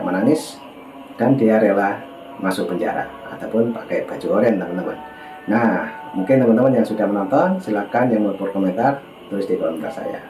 dan dia rela masuk penjara ataupun pakai baju oranye, teman-teman. Nah, mungkin teman-teman yang sudah menonton, silakan yang mau berkomentar tulis di kolom komentar saya.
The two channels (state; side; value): identical; both; correlation 1.00